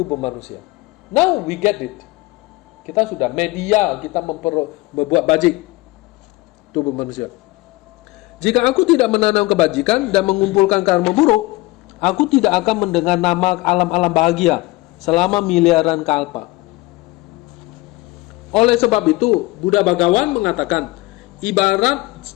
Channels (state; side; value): quieter; right; 21.3 dB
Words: manusia. Now we get it. Kita sudah media, kita membuat bajik tubuh manusia. Jika aku tidak menanam kebajikan dan mengumpulkan karma buruk, aku tidak akan mendengar nama alam-alam bahagia selama miliaran kalpa. Oleh sebab itu, Buddha Bhagawan mengatakan, ibarat